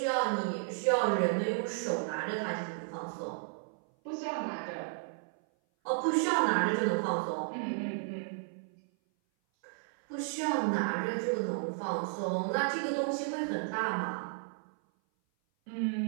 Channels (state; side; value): silent; left; 56 dB below the other